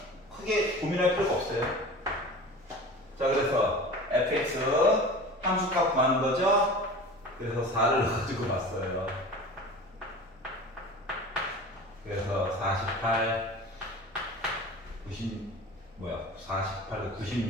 크게 고민할 필요가 없어요. 자, 그래서 fx 함수값 구하는 거죠. 그래서 4를 가지고 봤어요. 그래서 48,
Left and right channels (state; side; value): normal; both; correlation 0.36